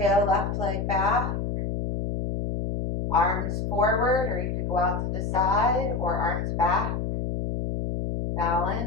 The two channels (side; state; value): left; noise; hum, 2 dB below the sound